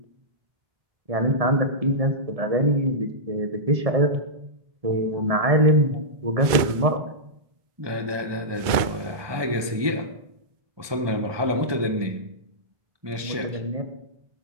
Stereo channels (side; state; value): left; late; 1.2 ms